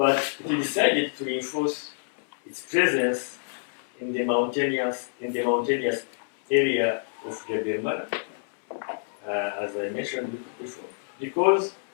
it decided to reinforce its presence in the mountainous area of Rutabana, as I mentioned before, because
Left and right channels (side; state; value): right; silent; 60 dB below the other